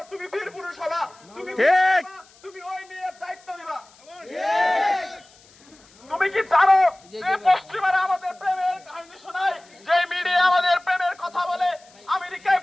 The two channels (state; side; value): noise; left; hiss, 27 dB below the sound